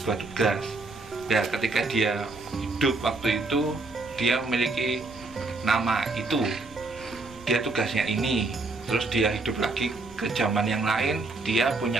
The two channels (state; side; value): quieter; left; 3.4 dB